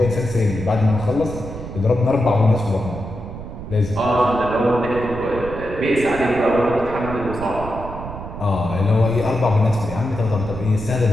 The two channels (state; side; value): noise; right; rumble, 10 dB below the sound